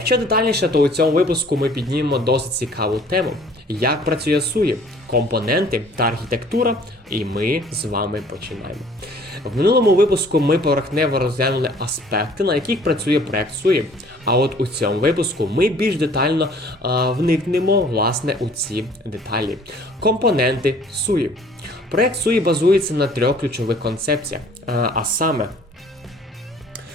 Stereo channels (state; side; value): normal; both; correlation 0.54